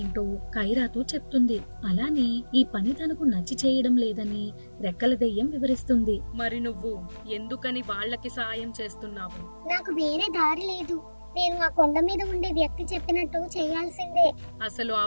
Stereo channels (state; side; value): inverted; both; correlation -1.00